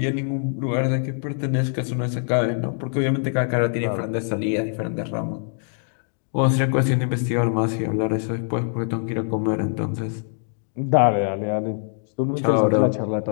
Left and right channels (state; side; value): silent; right; 61 dB below the other